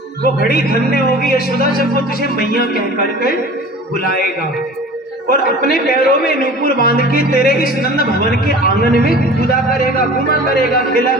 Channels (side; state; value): both; normal; correlation 0.41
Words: वो घड़ी धन्य होगी यशोदा जब वो तुझे मैया कह करके बुलाएगा, और अपने पैरों में नूपुर बांध के तेरे इस नंद भवन के आंगन में कूदा करेगा, घुमा करेगा, खेला